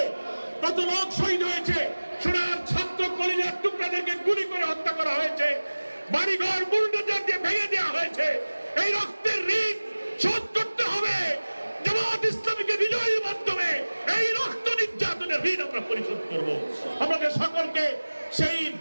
কত লোক শহীদ হয়েছে, সোনার ছাত্র কলিজার টুকরাদেরকে গুলি করে হত্যা করা হয়েছে, বাড়িঘর বুলডোজার দিয়ে ভেঙে দেওয়া হয়েছে। এই রক্তের ঋণ শোধ করতে হবে। জামাত ইসলামীকে বিজয়ের মাধ্যমে এই রক্ত নির্যাতনের ঋণ আমরা পরিশোধ করব। আমাদের সকলকে সেই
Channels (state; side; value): inverted; both; correlation -1.00